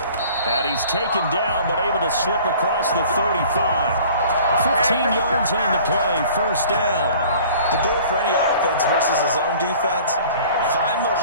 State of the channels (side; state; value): both; inverted; correlation -0.49